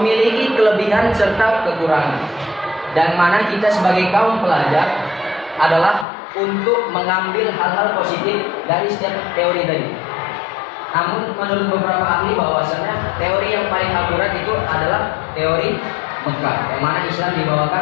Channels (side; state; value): right; drops out; at 6.1 s